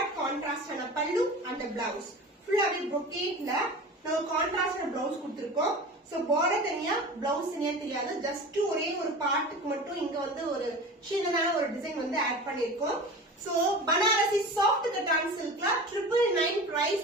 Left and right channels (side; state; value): both; normal; correlation 0.34